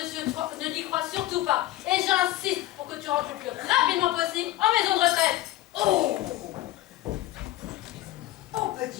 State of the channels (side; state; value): right; quieter; 15.7 dB